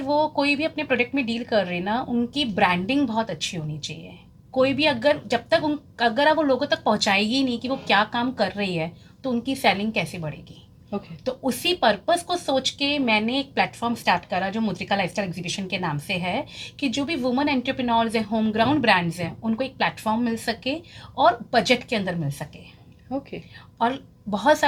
वो कोई भी अपने प्रोडक्ट में डील कर रहे ना, उनकी ब्रांडिंग बहुत अच्छी होनी चाहिए। कोई भी अगर जब तक अगर वो लोगों तक पहुंचाएगी नहीं कि वो क्या काम कर रही है, तो उनकी सेलिंग कैसे बढ़ेगी। ओके। तो उसी पर्पस को सोच के मैंने एक प्लेटफॉर्म स्टार्ट करा जो मुद्रिका लाइफस्टाइल एग्जीबिशन के नाम से है, कि जो भी वुमेन एंटरप्रेन्योर्स हैं, होम ग्राउंड ब्रांड्स हैं, उनको एक प्लेटफॉर्म मिल सके और बजट के अंदर मिल सके, ओके। और बहुत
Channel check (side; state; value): both; identical; correlation 1.00